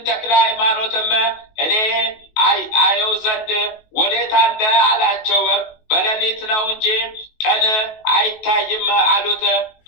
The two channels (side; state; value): right; late; 19 ms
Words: ተክለ ሃይማኖትም እኔ አየው ዘንድ ወዴት አለ አላቸው። በሌሊት ነው እንጂ ቀን አይታይም አሉት።